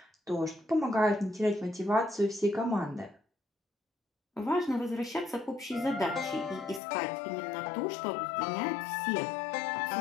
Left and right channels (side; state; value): right; drops out; at 6.8 s